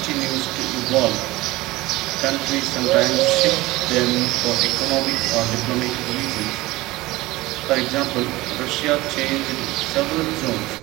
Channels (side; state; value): left; quieter; 19.6 dB